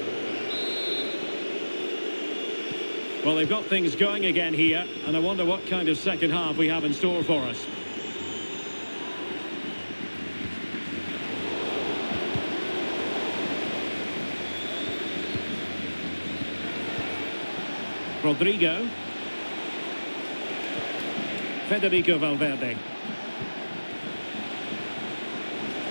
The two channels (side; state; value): both; inverted; correlation -1.00